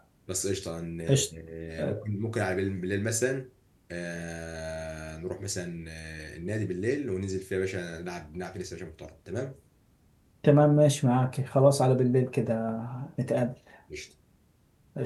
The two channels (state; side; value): identical; both; correlation 1.00